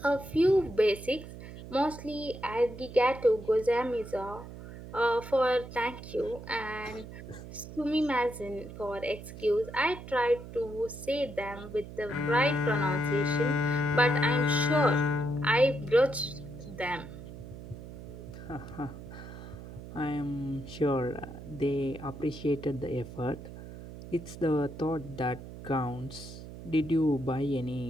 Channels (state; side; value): noise; right; hum, 13 dB below the sound